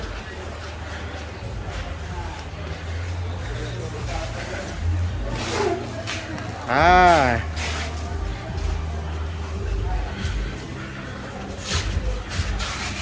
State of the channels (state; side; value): identical; both; correlation 1.00